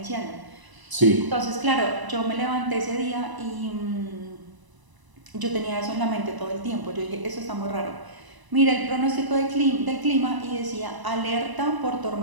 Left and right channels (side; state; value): left; late; 1.0 ms